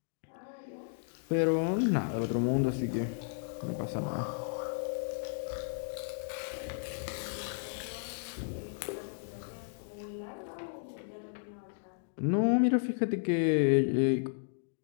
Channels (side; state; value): right; silent; digital silence